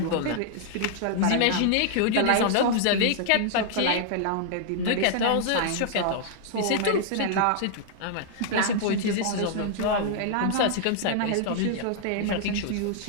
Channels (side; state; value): both; different; correlation -0.01